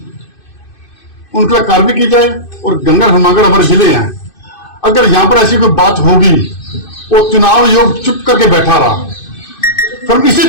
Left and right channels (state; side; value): late; right; 2.6 ms